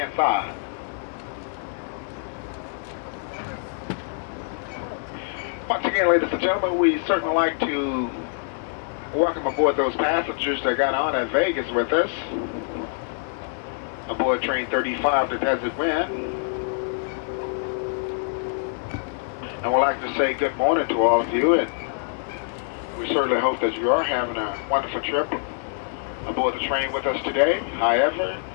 side. Once again, ladies and gentlemen, we certainly like to welcome aboard those passengers that got on at Vegas with us. Aboard train 35 to Desert Wind. And we'd like to say good morning to all of you, and we certainly hope that you are having a wonderful trip aboard the train with us today. However,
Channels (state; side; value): silent; right; 62 dB below the other